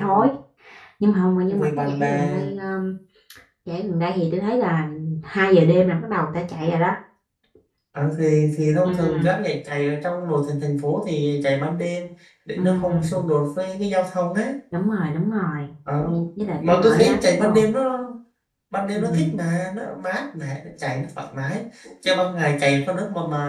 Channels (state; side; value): identical; both; correlation 1.00